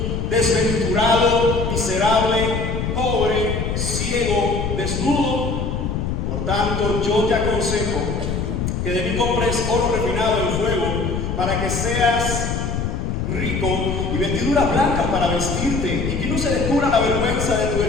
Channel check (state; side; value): noise; left; rumble, 2 dB below the sound